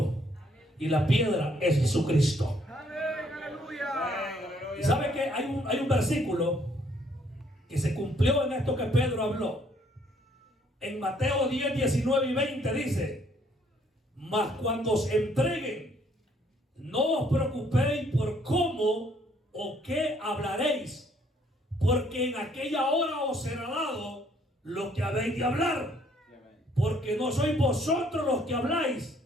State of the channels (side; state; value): both; normal; correlation 0.65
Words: Y la piedra es Jesucristo. Y sabe que hay un versículo que se cumplió en esto que Pedro habló. En Mateo 10, 19 y 20 dice: mas cuando os entreguen, no os preocupéis por cómo o qué hablaréis, porque en aquella hora os será dado lo que habéis de hablar. Porque no sois vosotros los que habláis,